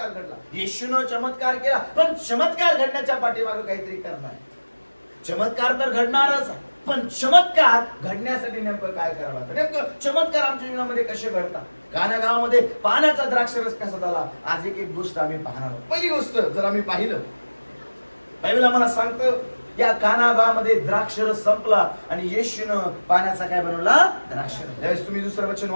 घडला? येशूनं चमत्कार केला, पण चमत्कार घडण्याच्या पाठीमागे काहीतरी कारण आहे. चमत्कार तर घडणारच आहे, पण चमत्कार घडण्यासाठी नेमकं काय करावं लागतं? नेमकं चमत्कार आमच्या जीवनामध्ये कसे घडतात? काना गावामध्ये पाण्याचा द्राक्षरस कसा झाला? आज एक गोष्ट आम्ही पाहणार आहोत. पहिली गोष्ट जर आम्ही पाहिलं, बायबल आम्हाला सांगतं या काना गावामध्ये द्राक्षरस संपला आणि येशूनं पाण्याचा काय बनवला? द्राक्षरस. ज्यावेळेस तुम्ही दुसरं वचन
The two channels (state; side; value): inverted; both; correlation -1.00